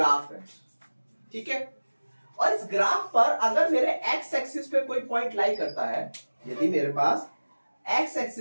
है, ठीक है, और इस ग्राफ पर अगर मेरे एक्स एक्सिस पे कोई पॉइंट लाई करता है, यदि मेरे पास एक्स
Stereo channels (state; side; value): inverted; both; correlation -1.00